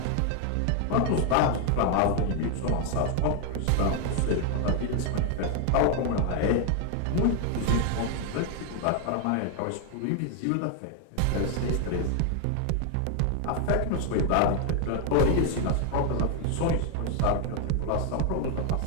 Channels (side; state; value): both; different; correlation 0.01